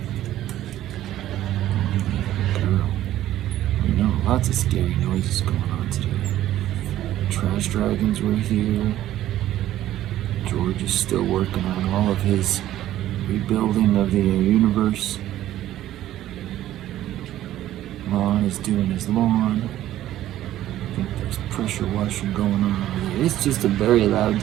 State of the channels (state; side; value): quieter; left; 13.3 dB